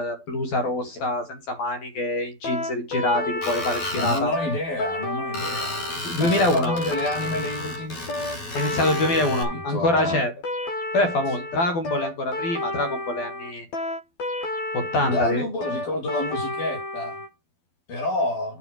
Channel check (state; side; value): late; right; 12 ms